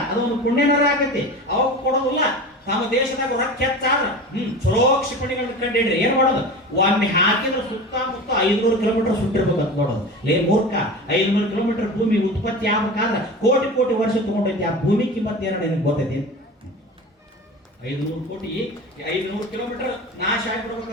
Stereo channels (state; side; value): normal; both; correlation 0.32